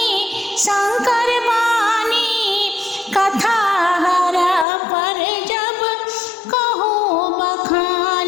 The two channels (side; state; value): right; drops out; at 4.7 s